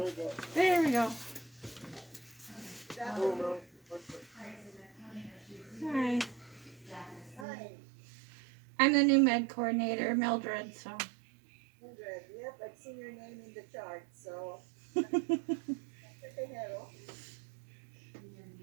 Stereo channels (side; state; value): left; drops out; at 7.5 s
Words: you go. There we go. Oh Saturday. no, perfect. Hi. Hi, I'm the new med coordinator, Mildred, so. Mildred. Yep, I've seen your name in the chart, so say hello.